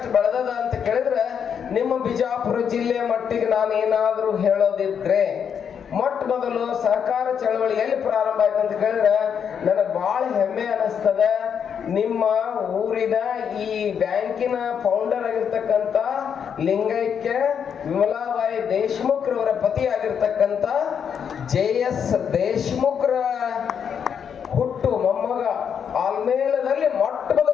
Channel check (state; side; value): quieter; right; 7.6 dB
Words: ಬೆಳೆದದ ಅಂತ ಕೇಳಿದ್ರೆ, ನಿಮ್ಮ ಬಿಜಾಪುರ ಜಿಲ್ಲೆಯ ಮಟ್ಟಿಗೆ ನಾನು ಏನಾದ್ರೂ ಹೇಳೋದಿದ್ರೆ, ಮೊಟ್ಟ ಮೊದಲು ಸಹಕಾರ ಚಳವಳಿ ಎಲ್ಲಿ ಪ್ರಾರಂಭ ಆಯ್ತು ಅಂತ ಕೇಳಿದ್ರೆ ನನಗೆ ಬಹಳ ಹೆಮ್ಮೆ ಅನಿಸ್ತದೆ. ನಿಮ್ಮ ಊರಿನ ಈ ಬ್ಯಾಂಕಿನ ಫೌಂಡರ್ ಆಗಿರ್ತಕ್ಕಂಥ ಲಿಂಗೈಕ್ಯ ವಿಮಲಾಬಾಯಿ ದೇಶಮುಖ್ರವರ ಪತಿಯಾಗಿರ್ತಕ್ಕಂಥ JS ದೇಶಮುಖ್ರ ಹುಟ್ಟು ಮೊಮ್ಮಗ ಆಲ್ಮೇಲದಲ್ಲಿ ಮೊಟ್ಟ